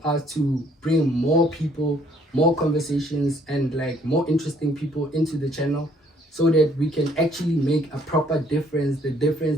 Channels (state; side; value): normal; both; correlation 0.64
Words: us to bring more people more conversations and like more interesting people into the channel, so that we can actually make a proper difference, the